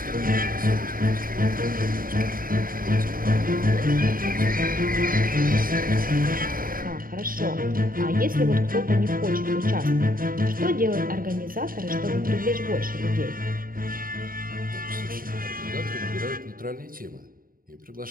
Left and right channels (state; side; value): late; left; 0.41 ms